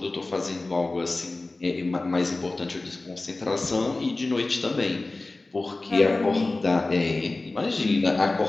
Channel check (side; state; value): right; quieter; 3.1 dB